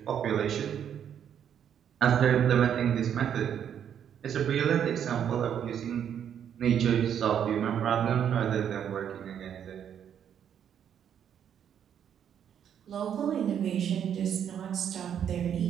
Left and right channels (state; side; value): quieter; left; 8.9 dB